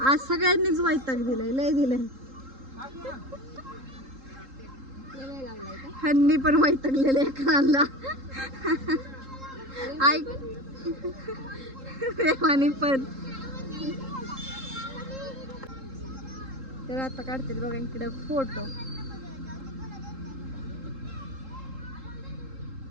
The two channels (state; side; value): late; left; 3.8 ms